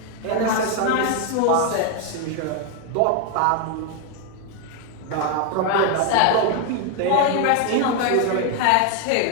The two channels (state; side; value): different; both; correlation 0.01